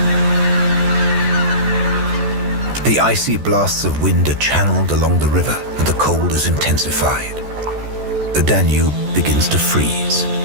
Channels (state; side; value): late; left; 14 ms